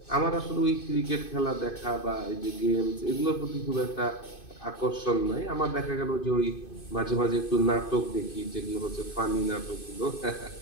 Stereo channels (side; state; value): right; late; 2.5 ms